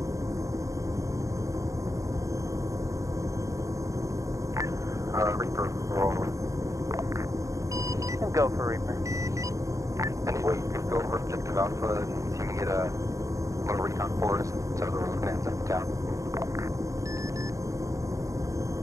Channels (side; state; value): left; late; 0.16 ms